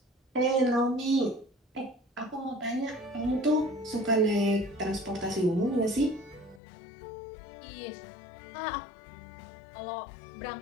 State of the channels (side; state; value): right; drops out; at 6.6 s